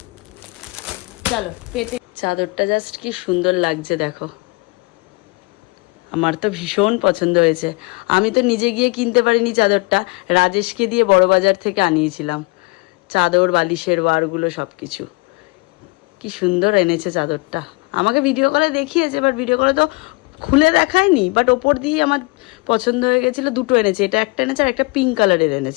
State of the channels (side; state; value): right; quieter; 27.4 dB